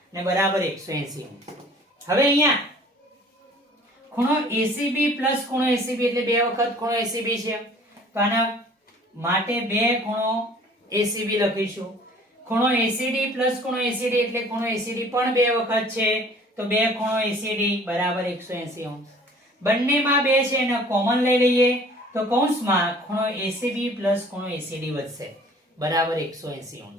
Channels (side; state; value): both; normal; correlation 0.51